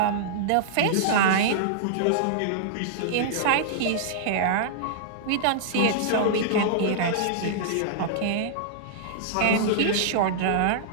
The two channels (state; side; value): different; both; correlation -0.02